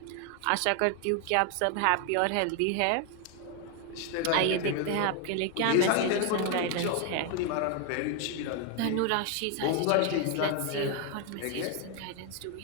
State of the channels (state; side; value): different; both; correlation 0.01